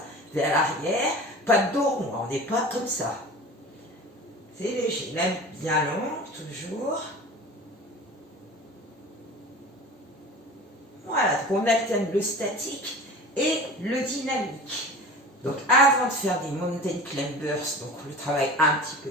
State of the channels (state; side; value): normal; both; correlation 0.37